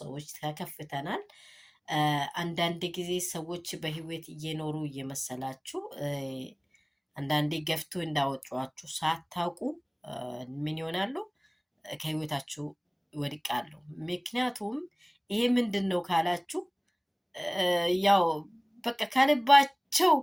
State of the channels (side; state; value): both; identical; correlation 1.00